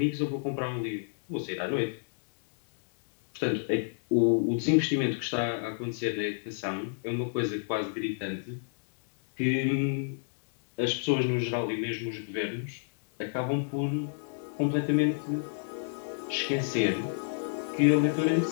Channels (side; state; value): right; silent; digital silence